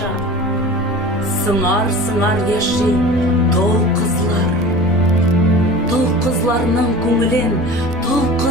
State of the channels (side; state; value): both; normal; correlation 0.37